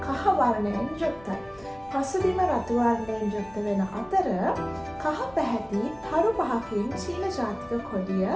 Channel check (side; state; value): left; noise; rumble, 24 dB below the sound